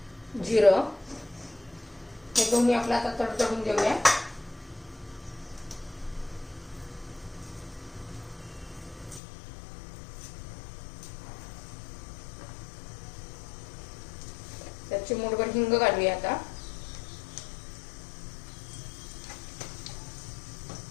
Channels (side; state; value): right; drops out; at 9.2 s